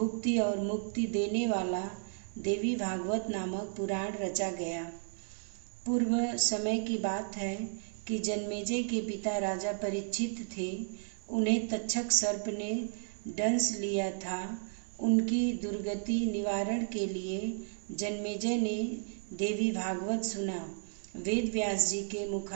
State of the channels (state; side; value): silent; left; digital silence